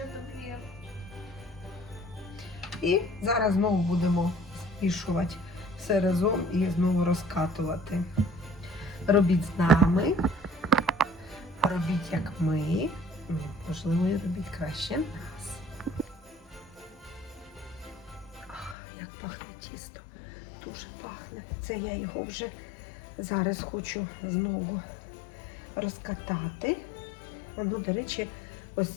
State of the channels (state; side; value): drops out; right; at 18.8 s